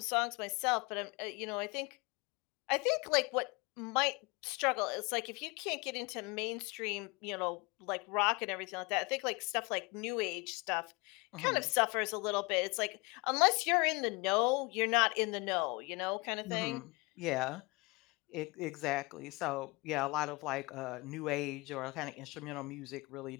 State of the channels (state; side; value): quieter; right; 26.4 dB